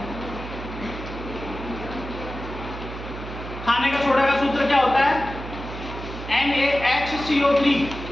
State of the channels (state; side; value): noise; right; hum, 10 dB below the sound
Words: खाने का सोडा का सूत्र क्या होता है, NaHCO3,